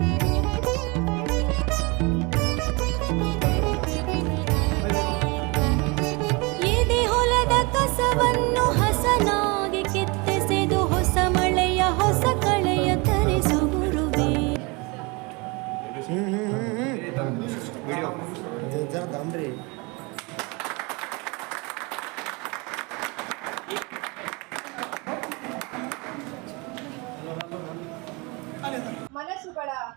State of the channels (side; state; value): left; quieter; 28.0 dB